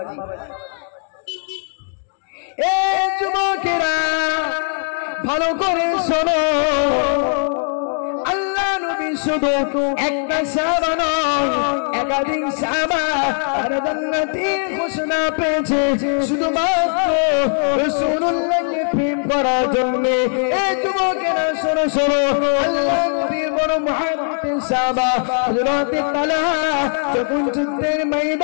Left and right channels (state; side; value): silent; right; 63 dB below the other